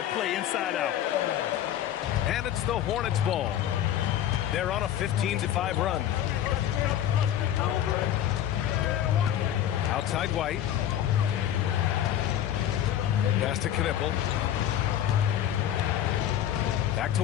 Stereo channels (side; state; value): right; quieter; 11.1 dB